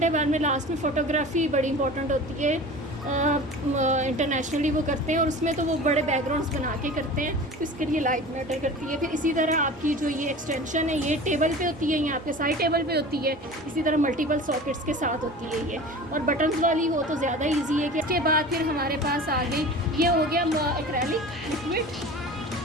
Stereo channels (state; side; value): normal; both; correlation 0.37